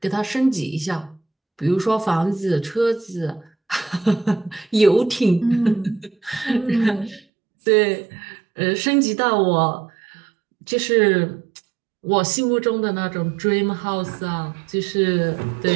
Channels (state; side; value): drops out; left; at 7.2 s